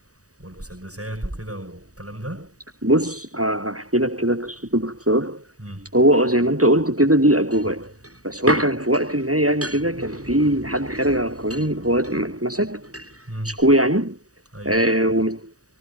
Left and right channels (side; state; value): left; late; 0.66 ms